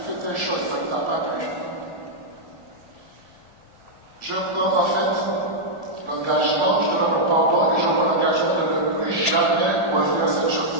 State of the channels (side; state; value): left; late; 1.5 ms